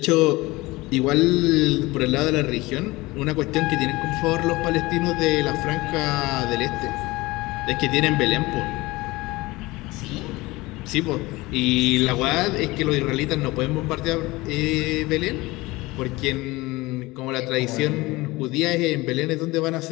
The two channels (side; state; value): right; quieter; 21.2 dB